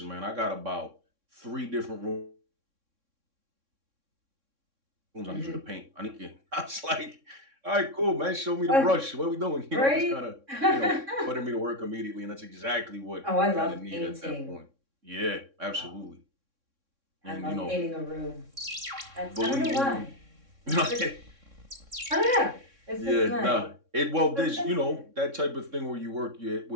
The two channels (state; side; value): late; left; 3.6 ms